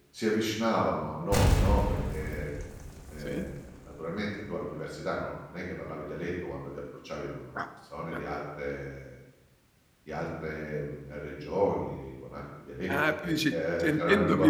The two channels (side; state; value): both; identical; correlation 1.00